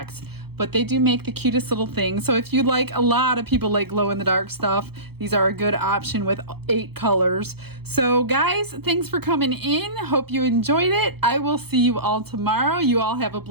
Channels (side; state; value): left; late; 0.96 ms